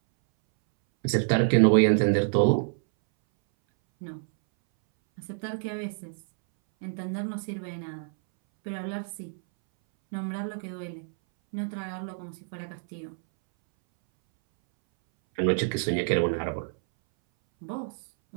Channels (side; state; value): left; silent; 60 dB below the other